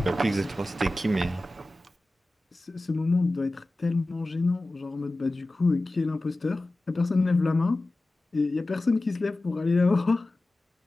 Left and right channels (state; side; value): normal; both; correlation 0.97